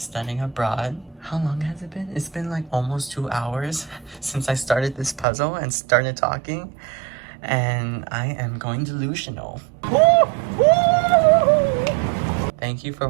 abroad. How long has it been? It's been like almost 2 hours since I started this puzzle and started talking, and I am going delusional. Thank you for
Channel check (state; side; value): drops out; left; at 5.2 s